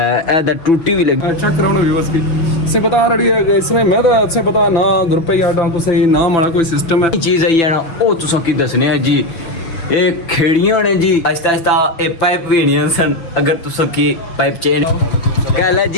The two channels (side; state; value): right; late; 6.0 ms